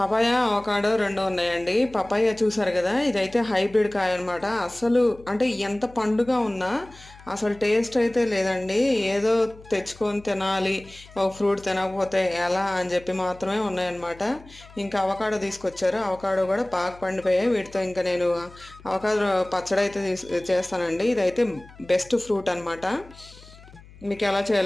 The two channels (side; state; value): left; noise; hum, 22 dB below the sound